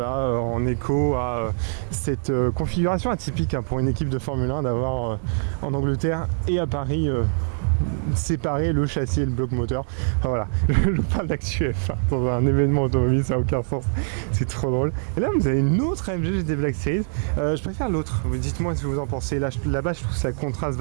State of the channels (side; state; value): left; silent; digital silence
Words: en écho à cette configuration atypique pour une équipe de Formule 1 d'avoir en Angleterre et à Paris séparer le châssis et le bloc moteur. Enfin, voilà, je parle d'actu F1 dans un événement automobile, ça n'a aucun sens, c'est trop drôle. Et là vous avez une autre AMG GT Black Series, je préfère l'autre, dites-moi ce que vous en pensez. Là-bas je trouve que ça contraste